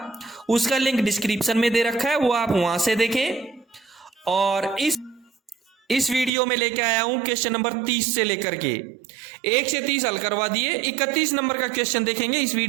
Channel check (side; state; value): left; drops out; at 6.3 s